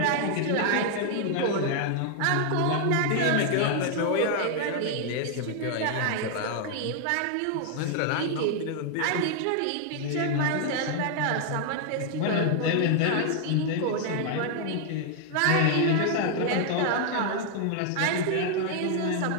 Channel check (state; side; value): different; both; correlation 0.00